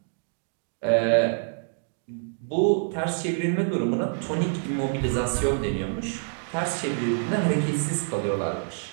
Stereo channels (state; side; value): silent; left; digital silence